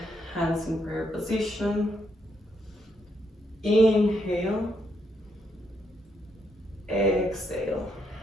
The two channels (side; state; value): both; normal; correlation 0.77